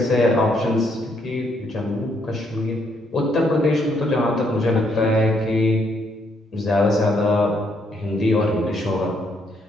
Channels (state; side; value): normal; both; correlation 0.72